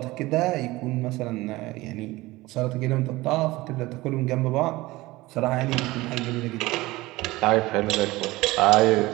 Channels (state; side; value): quieter; left; 19.7 dB